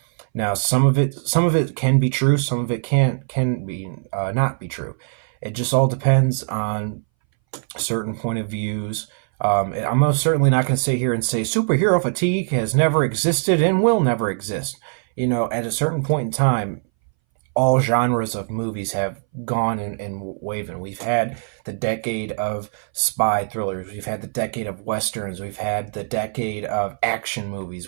Now, some of it can be true, some of it can be not be true. It just all depends on certain point of views. I'm most certainly not going to sit here and say superhero fatigue has never existed and will never exist. At a certain point in time, all genres of movies have gone and waven. We've had the decade of spy thrillers. We've had the decade of westerns. We've had the decade of action movies.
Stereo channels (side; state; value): left; silent; 62 dB below the other